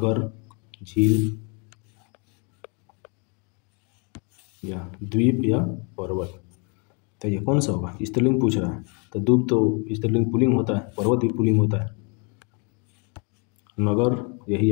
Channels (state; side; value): quieter; right; 34.9 dB